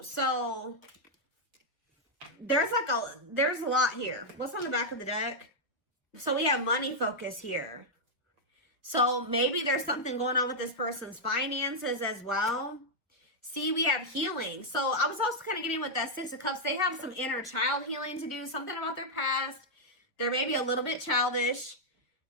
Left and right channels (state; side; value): normal; both; correlation -0.04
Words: So there's a lot here. What's on the back of the deck? So we have money focus here. So maybe there's something going on with this person's finances as well. See, we have healing. So I was also kind of getting with that Six of Cups. They have some inner child healing to do, something about their past. They're maybe a little bit childish.